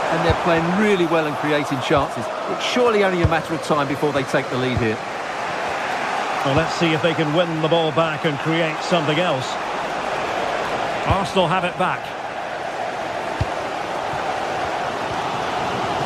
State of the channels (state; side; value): identical; both; correlation 1.00